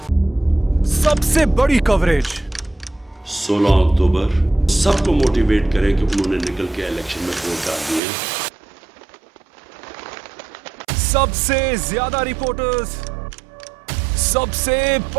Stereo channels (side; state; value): left; drops out; at 8.0 s